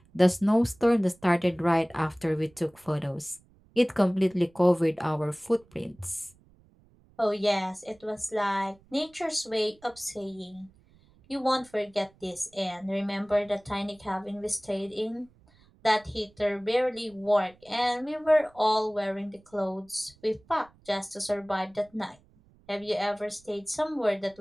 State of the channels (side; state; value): right; noise; rumble, 29 dB below the sound